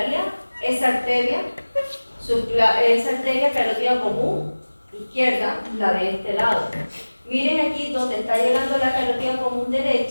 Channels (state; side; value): inverted; both; correlation -1.00